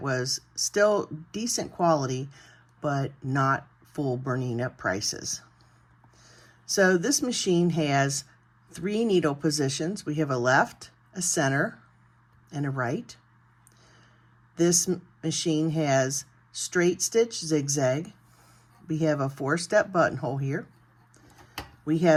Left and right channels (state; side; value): identical; both; correlation 1.00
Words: was still decent quality, but not full Bernina prices. So this machine has 3 needle positions. We have a left, a center, and a right. This machine has straight stitch zigzag. We have a 4-step buttonhole here. We